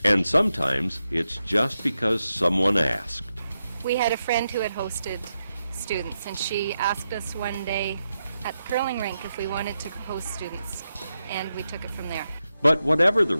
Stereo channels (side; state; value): both; inverted; correlation -0.87